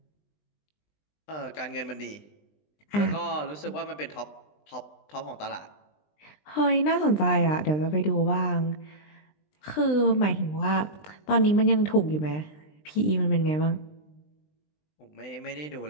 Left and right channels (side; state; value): right; late; 20 ms